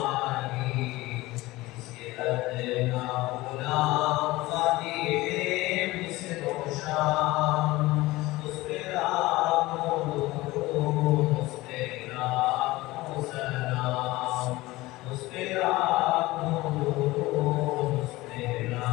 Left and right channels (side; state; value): right; quieter; 19.4 dB